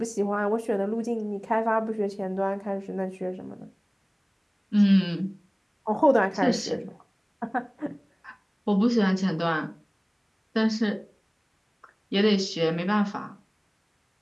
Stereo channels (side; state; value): both; identical; correlation 1.00